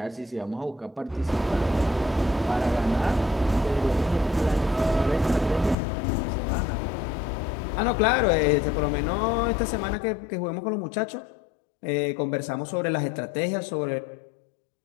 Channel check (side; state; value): right; drops out; at 5.8 s